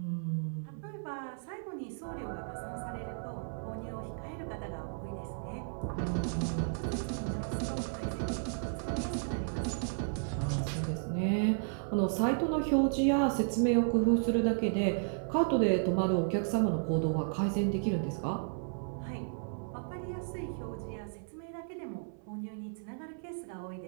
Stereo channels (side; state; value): left; silent; 55 dB below the other